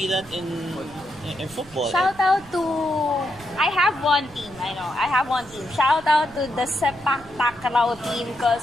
that in football. Shout out to... I have one team. Shout out to the Sepak Takraw team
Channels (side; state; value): right; noise; rumble, 22 dB below the sound